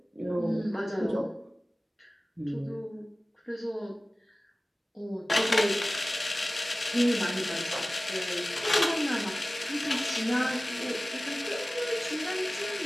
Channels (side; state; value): both; normal; correlation 0.97